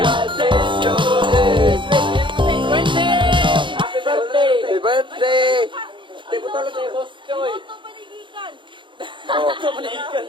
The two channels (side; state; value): left; late; 0.24 ms